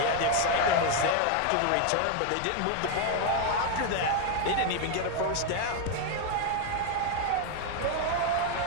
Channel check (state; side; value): different; both; correlation 0.01